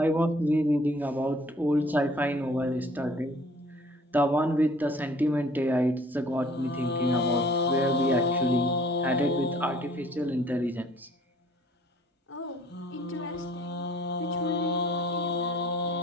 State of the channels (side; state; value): both; normal; correlation 0.54